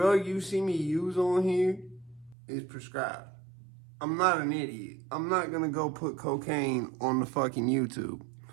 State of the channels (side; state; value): left; drops out; at 2.4 s